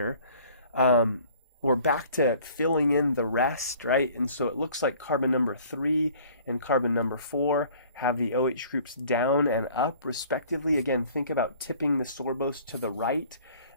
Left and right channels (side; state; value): both; inverted; correlation -0.52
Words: We're back to filling in the rest, right? And so it looks like carbon number 3 and carbon number 4 have the OH groups down and up respectively. Again, think about tipping the sorbose to the right.